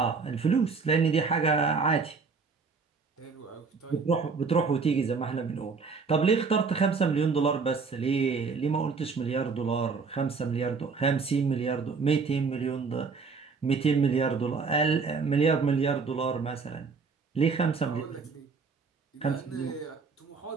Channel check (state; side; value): quieter; left; 4.9 dB